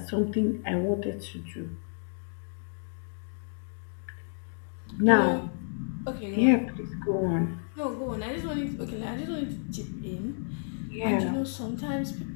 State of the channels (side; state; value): right; silent; digital silence